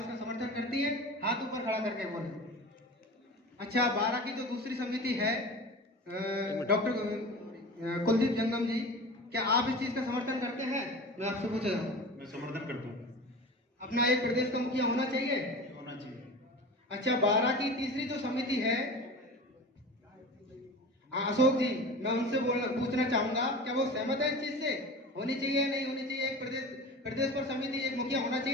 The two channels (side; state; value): both; normal; correlation 0.34